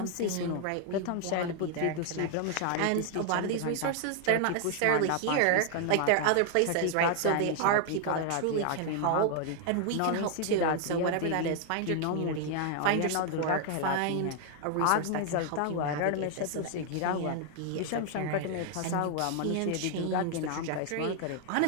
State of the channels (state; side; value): different; both; correlation 0.00